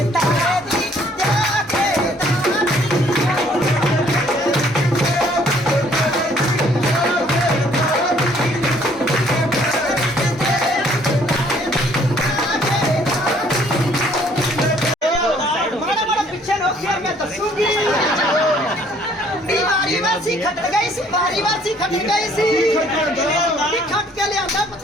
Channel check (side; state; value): both; normal; correlation 0.61